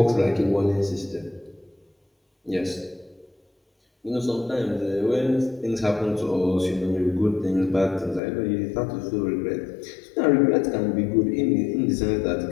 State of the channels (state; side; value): drops out; right; at 8.2 s